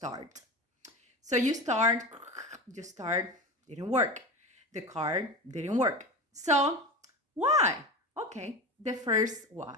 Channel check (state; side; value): normal; both; correlation 0.27